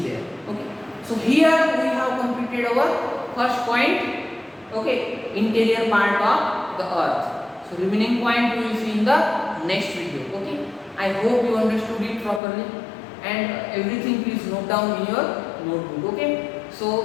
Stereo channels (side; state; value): right; drops out; at 12.4 s